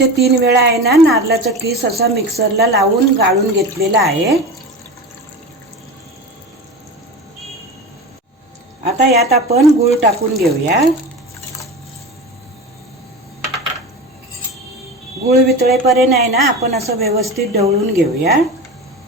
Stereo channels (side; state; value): both; normal; correlation 0.28